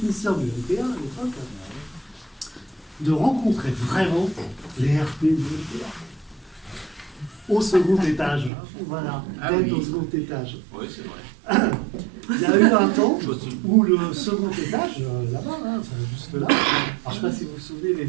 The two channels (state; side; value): drops out; left; at 8.5 s